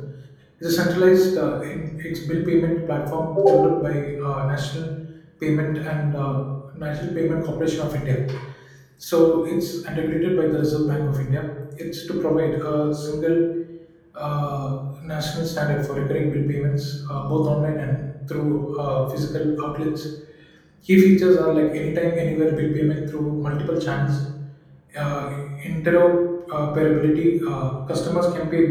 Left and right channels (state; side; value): identical; both; correlation 1.00